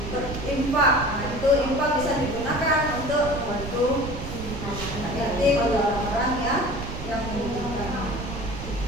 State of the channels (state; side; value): noise; right; rumble, 8 dB below the sound